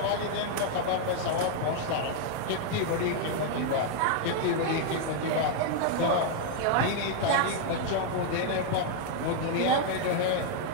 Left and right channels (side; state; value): both; different; correlation 0.00